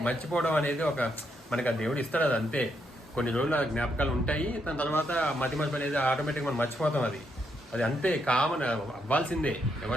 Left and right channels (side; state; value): both; normal; correlation 0.78